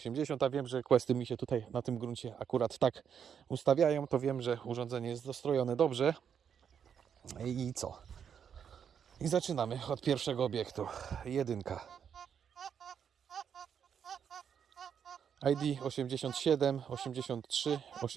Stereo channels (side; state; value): left; quieter; 7.8 dB